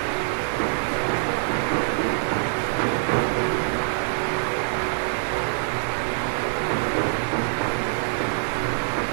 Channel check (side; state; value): left; silent; 62 dB below the other